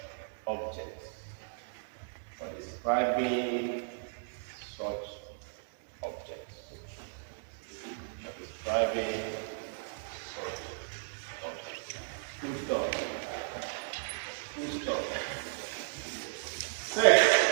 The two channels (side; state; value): left; silent; digital silence